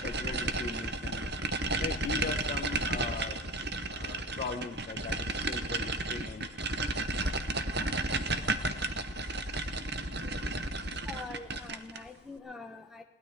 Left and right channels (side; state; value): both; normal; correlation 0.32